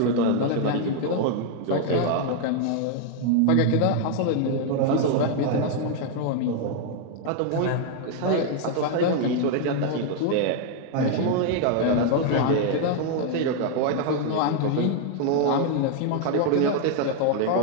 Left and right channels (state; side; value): different; both; correlation 0.00